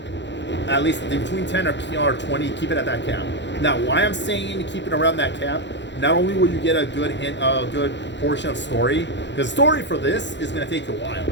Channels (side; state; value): right; late; 0.52 ms